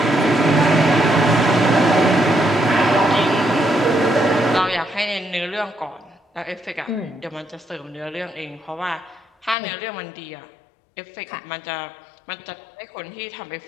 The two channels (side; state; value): right; drops out; at 9.6 s